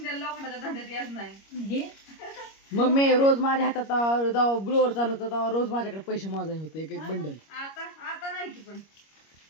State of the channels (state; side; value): late; right; 25 ms